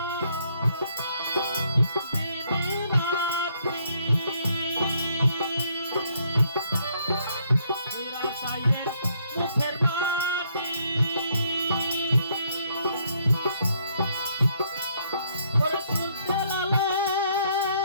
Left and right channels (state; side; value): inverted; both; correlation -0.69